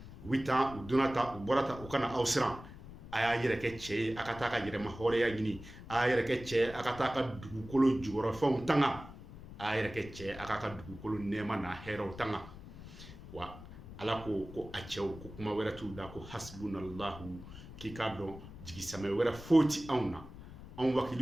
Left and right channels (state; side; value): noise; left; rumble, 15 dB below the sound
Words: u bɛ taa u donna ta u bɔra ta u kana aw siran, a y'a yɛrɛ kɛ cɛ ye, a ka taa ka yɛrɛma hɔrɔnya ɲini, a y'a yɛrɛ kɛ cɛ ye, a ka taa ka dugukolo jukɔrɔfɛnw tanga, a y'a yɛrɛ kɛ cɛ ye, a ka dugukolo nɛɛma n'a hɛrɛw tanga. Wa Ala ko a cɛw ko kuma wɛrɛ t'u da ko hasbunallahu, k'i k'a dɔn jigisamɛ wɛrɛ foyi ti anw na, anw